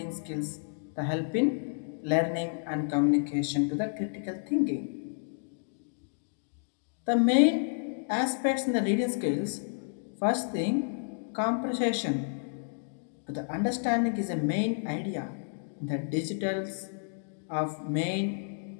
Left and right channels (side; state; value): right; silent; digital silence